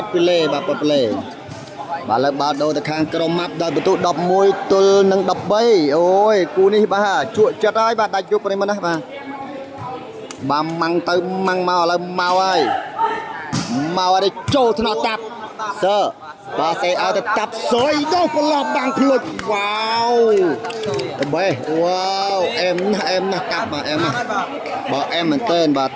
ាត់ពីលេបាទប៉ាត់ពីលេបាទឥឡូវបាល់ដូរទៅខាងក្រុមម៉ាប់ដោយបន្ទុក11ទល់នឹង 13អូយគូនេះបាទជក់ចិត្តហើយបាទដាច់យុបប្រិមិត្តណាបាទម៉ាំងទៅម៉ាំងមកឥឡូវមកហើយចូលថ្នាក់តាប់សើបាទសេឲ្យទៅតាប់សុយដោះប្រឡោះបាំងភ្លុចវ៉ាវទៅបេះវ៉ាវអែមណាស់តាប់បាទអែមណាស់បាទអែមមែនទែនបាទ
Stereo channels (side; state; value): both; identical; correlation 1.00